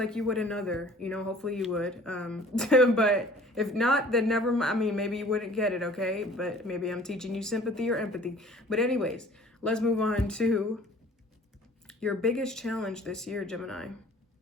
you would another, you know, hopefully you would. But if not, then never mind. I mean, maybe you wouldn't get it, okay? But maybe I'm teaching you sympathy or empathy. But anyways, let's move on to your biggest challenge this year, Gemini.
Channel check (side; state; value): both; normal; correlation 0.50